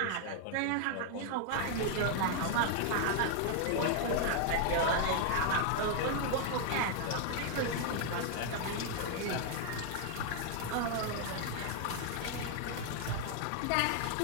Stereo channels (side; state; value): both; different; correlation 0.00